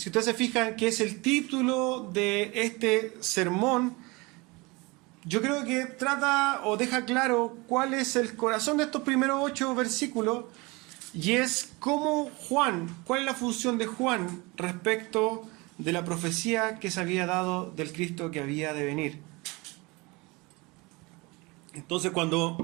ustedes se fijan, que es el título de este sermón, yo creo que trata o deja claro cuál es el corazón de estos primeros 8 versículos, y es cómo cuál es la función de Juan respecto de la profecía que se había dado del Cristo que había de venir. Entonces, cuando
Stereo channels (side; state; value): left; quieter; 25.2 dB